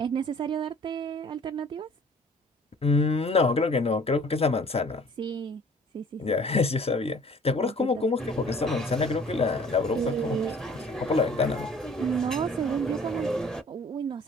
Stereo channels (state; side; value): normal; both; correlation 0.52